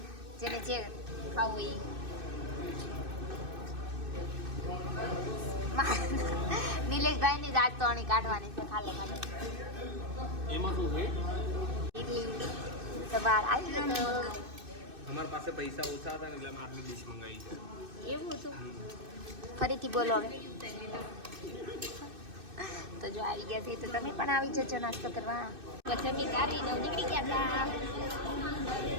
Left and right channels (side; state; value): left; late; 2.6 ms